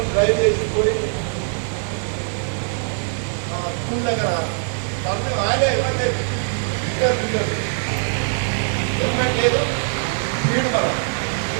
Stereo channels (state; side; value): silent; left; digital silence